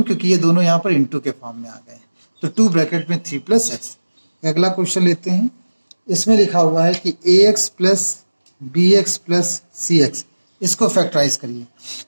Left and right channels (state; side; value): inverted; both; correlation -1.00